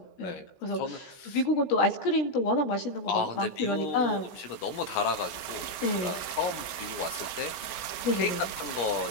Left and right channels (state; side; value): late; right; 16 ms